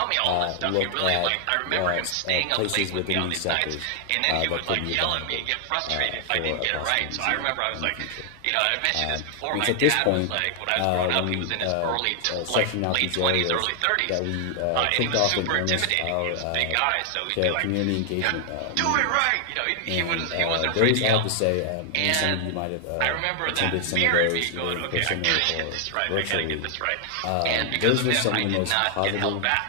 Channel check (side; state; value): both; different; correlation 0.00